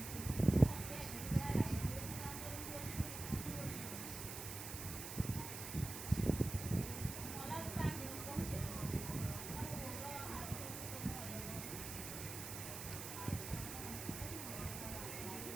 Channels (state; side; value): noise; right; hiss, 7 dB below the sound